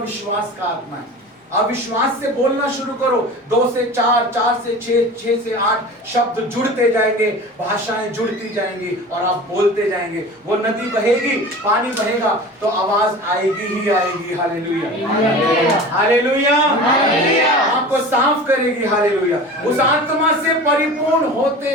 का आत्मा है। अविश्वास से बोलना शुरू करो, 2 से 4, 4 से 6, 6 से 8 शब्द जुड़ते जाएंगे, भाषाएं जुड़ती जाएंगी और आप बोलते जाएंगे। वो नदी बहेगी, पानी बहेगा तो आवाज आएगी ही आएगी। हालेलुया, हालेलुया, आपको साफ करेगी। हालेलुया, उस आत्मा से परिपूर्ण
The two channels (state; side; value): normal; both; correlation 0.36